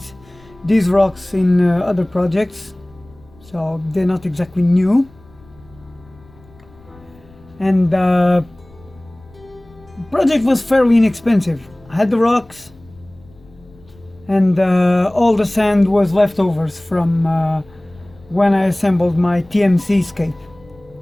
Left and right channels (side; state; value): left; noise; rumble, 26 dB below the sound